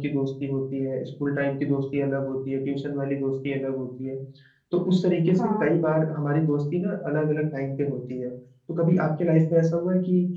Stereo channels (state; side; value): identical; both; correlation 1.00